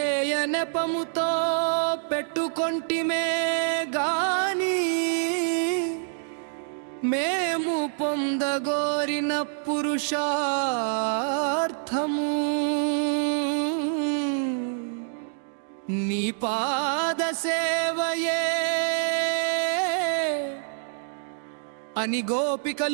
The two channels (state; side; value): silent; left; digital silence